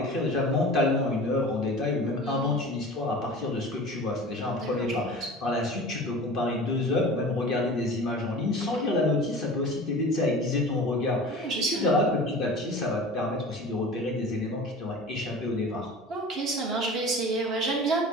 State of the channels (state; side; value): normal; both; correlation 0.38